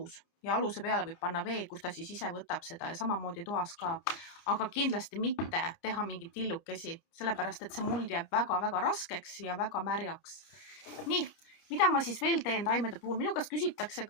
ja aluse peale võib panna vee, kus ta siis ise võtab seda ja samamoodi toas ka. Aga kindlasti mitte teha mingit tillukesi, sellepärast et see muld jääb väga-väga raskeks ja väga märjaks. Nii, mida ma siis veel teen taimede puhul? Minu käest küsitakse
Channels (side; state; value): right; late; 30 ms